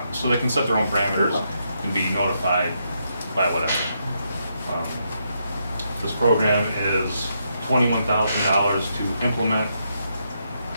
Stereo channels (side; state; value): both; inverted; correlation -0.79